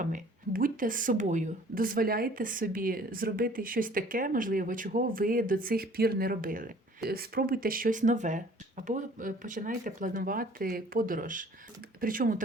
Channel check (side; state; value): both; normal; correlation 0.53